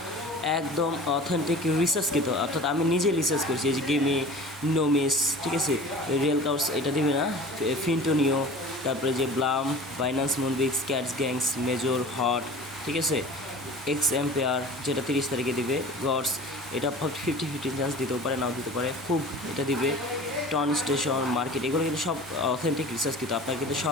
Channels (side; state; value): both; normal; correlation 0.40